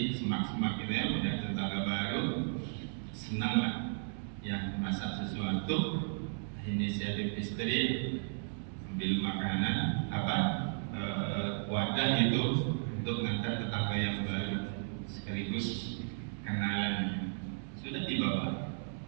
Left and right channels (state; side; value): silent; left; digital silence